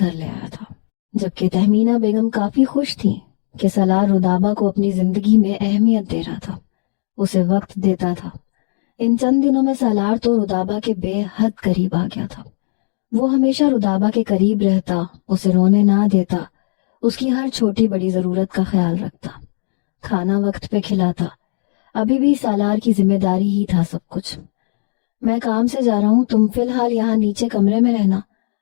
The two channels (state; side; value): silent; right; digital silence